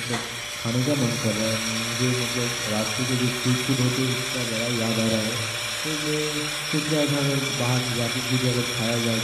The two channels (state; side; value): identical; both; correlation 1.00